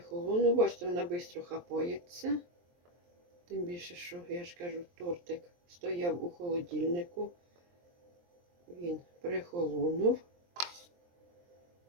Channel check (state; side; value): late; left; 23 ms